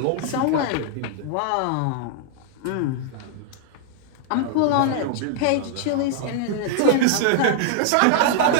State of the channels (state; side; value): different; both; correlation 0.00